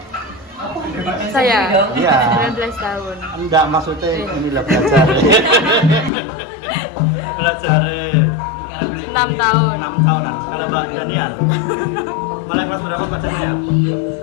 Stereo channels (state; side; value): drops out; right; at 6.1 s